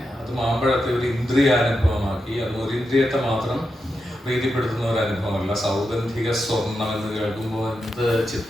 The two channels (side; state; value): both; normal; correlation 0.87